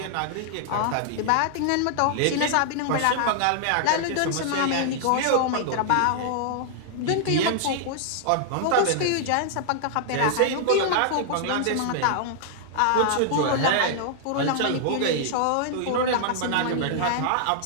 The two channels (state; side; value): different; both; correlation -0.01